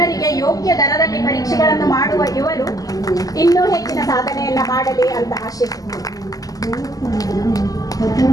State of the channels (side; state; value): right; late; 0.17 ms